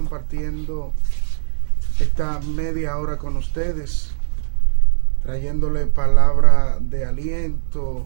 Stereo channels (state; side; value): silent; left; digital silence